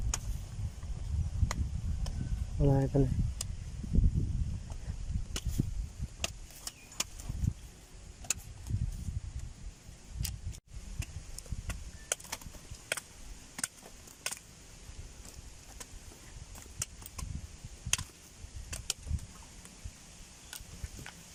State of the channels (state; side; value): identical; both; correlation 1.00